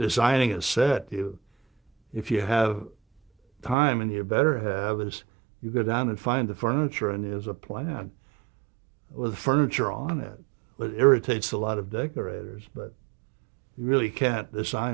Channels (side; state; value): left; drops out; at 3.8 s